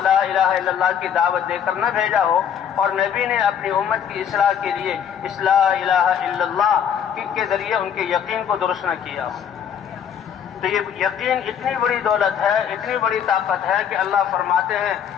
الہ الا اللہ کی دعوت دے کر نہ بھیجا ہو اور نبی نے اپنی امت کی اصلاح کے لیے اس لا الہ الا اللہ کے ذریعے ان کے یقین کو درست نہ کیا ہو. تو یہ یقین اتنی بڑی دولت ہے، اتنی بڑی طاقت ہے کہ اللہ فرماتے ہیں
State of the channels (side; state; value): right; quieter; 8.4 dB